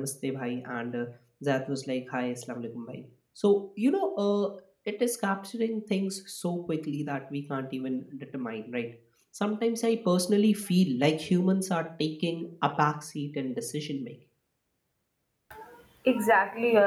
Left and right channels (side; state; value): both; identical; correlation 1.00